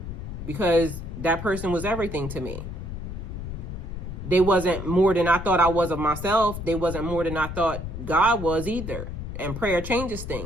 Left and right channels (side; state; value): left; noise; rumble, 7 dB below the sound